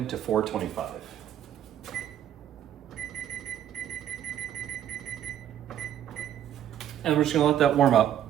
to 425. And we're just gonna let that warm up.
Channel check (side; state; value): left; quieter; 10.6 dB